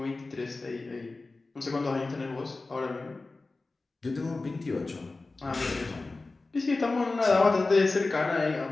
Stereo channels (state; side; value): quieter; right; 3.5 dB